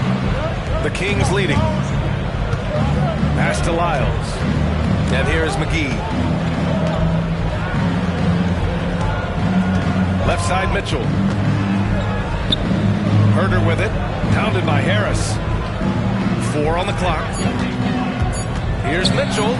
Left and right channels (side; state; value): both; identical; correlation 1.00